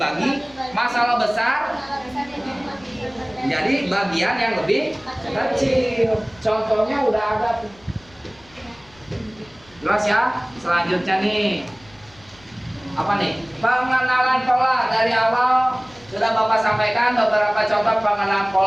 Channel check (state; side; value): noise; left; rumble, 27 dB below the sound